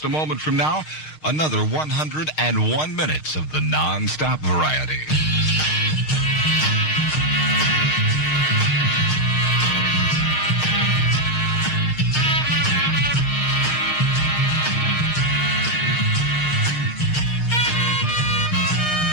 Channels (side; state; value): right; late; 6.5 ms